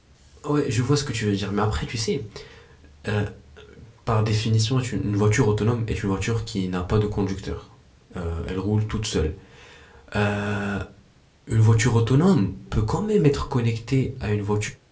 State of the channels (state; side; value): identical; both; correlation 1.00